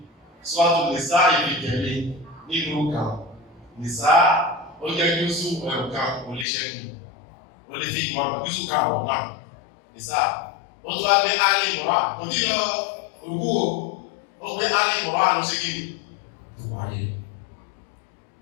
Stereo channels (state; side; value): drops out; right; at 6.5 s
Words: sọ́tù nìsá ìbí tẹ̀lé nínú kan nìsá ó jẹ́ jùsù ẹ̀ọ̀kan olíṣẹ́gun ó lè fi ìmọ̀ jùsù káàwọ̀ náà nìsá ó tó wá gbé alì mọ̀rá kò tí lọ ògú ó gbé alì mọ̀rá ló ṣe gíní tó wáyé